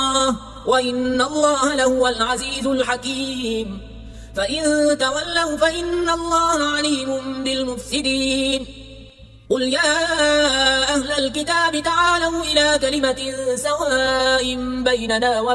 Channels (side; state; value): both; identical; correlation 1.00